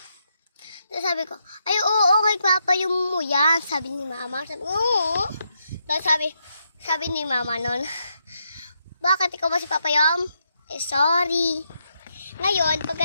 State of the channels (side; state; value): both; inverted; correlation -0.80